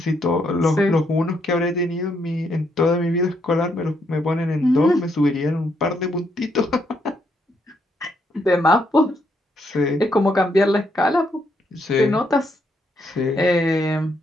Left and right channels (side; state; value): both; normal; correlation 0.75